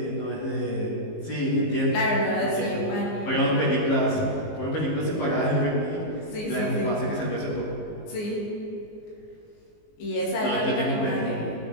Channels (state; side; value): late; right; 19 ms